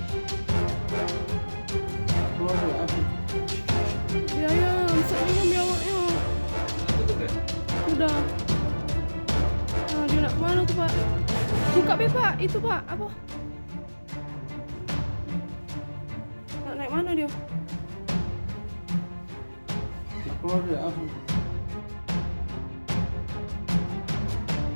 Keluar ya? Apa? Ya, ya, Amsat ni ambil awaknya. Sudah tutup ya? Sudah. Nah, dia nak kemana tu, Pak? Buka be, Pak. Itu, Pak. Apa? Nak naik mana dia? Keluar ya? Apa?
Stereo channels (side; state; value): both; inverted; correlation -1.00